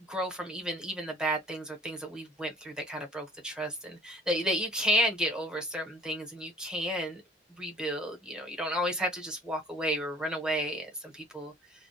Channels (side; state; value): both; normal; correlation 0.51